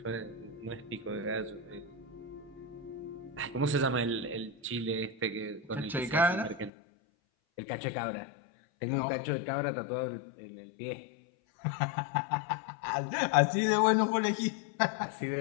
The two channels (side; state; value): right; drops out; at 6.7 s